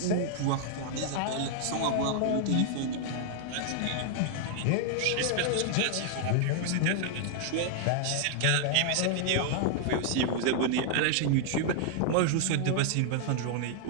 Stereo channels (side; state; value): both; different; correlation 0.00